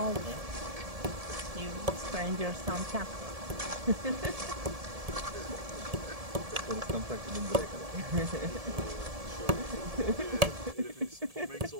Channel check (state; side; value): late; left; 1.7 ms